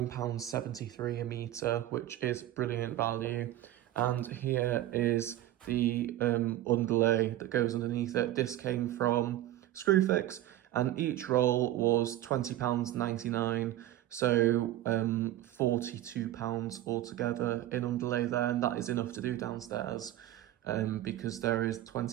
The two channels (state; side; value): quieter; left; 13.9 dB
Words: a metre, which is brilliant value. And here is the underlay that goes underneath it. This came from Screwfix, and each roll was £20.99, so £42 altogether in underlay there, and that is enough to do downstairs. Because there is